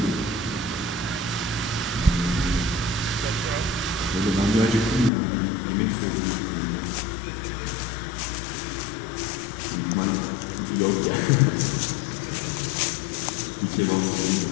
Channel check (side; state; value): right; drops out; at 5.1 s